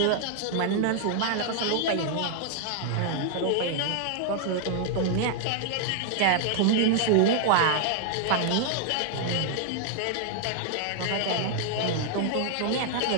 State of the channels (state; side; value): different; both; correlation 0.00